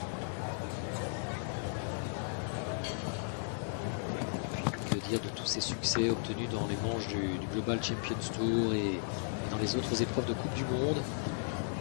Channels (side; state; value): right; silent; digital silence